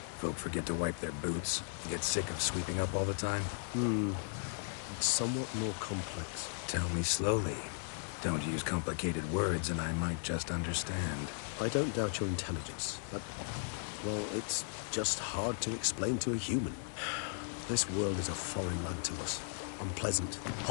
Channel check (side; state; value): right; silent; 53 dB below the other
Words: Folk forget to wipe their boots, get sick of sweeping up all the time? It's somewhat more complex. Tell me slowly. Don't use complicated words and I might just understand. I don't doubt your intelligence, but, well, it's just hard to explain to a human. This world is a foreign land to us. Unpleasant,